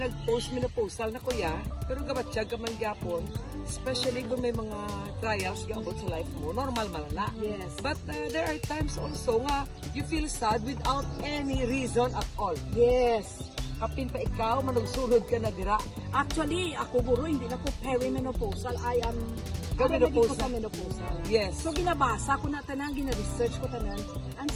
nag-post menopausal na kuya, pero gabatsyag ka man gyapon, especially kung may mga trials gabot sa life mo, normal malala. Yes. But there are times also nga you feel sad without any reason at all. Yes. Kapin pa ikaw, manugsulod ka na dira. Actually, ako guro, hindi na ko perimenopausal. I am Menopausal. sa menopausal. Yes. So, ginabasa ko na tanan, gina-research ko tanan,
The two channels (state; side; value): identical; both; correlation 1.00